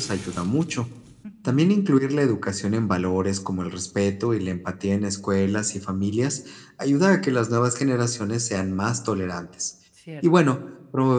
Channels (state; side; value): identical; both; correlation 1.00